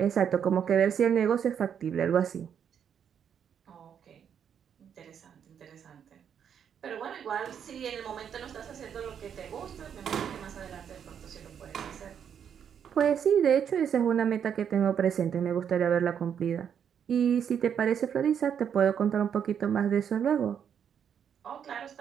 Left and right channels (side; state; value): left; quieter; 8.2 dB